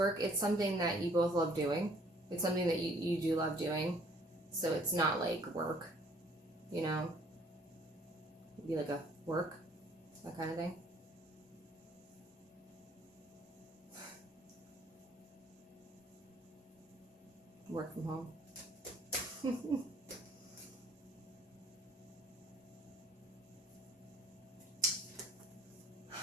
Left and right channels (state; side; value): normal; both; correlation 0.58